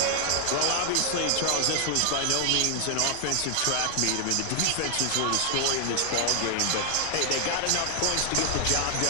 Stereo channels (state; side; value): different; both; correlation 0.00